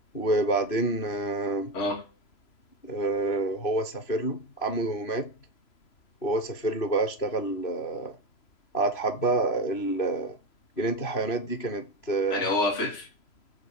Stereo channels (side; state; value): right; late; 3.0 ms